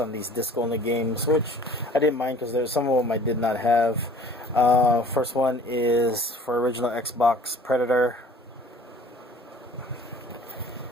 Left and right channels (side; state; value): both; normal; correlation 0.50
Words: these disc-only games, which I didn't mind because there's some of them I did not have. First one is for original Xbox Predator,